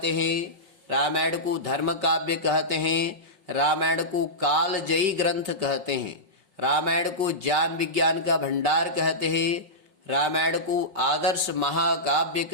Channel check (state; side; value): late; left; 5.5 ms